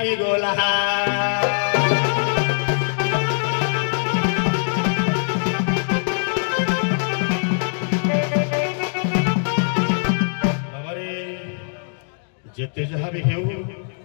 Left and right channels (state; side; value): silent; right; digital silence